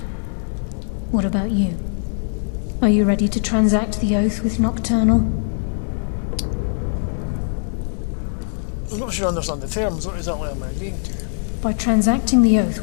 What about you? Are you ready to transact the oath with Nocturnal? I'm not sure I understand the terms. What exactly am I agreeing to? By transacting the oath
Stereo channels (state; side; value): silent; right; 65 dB below the other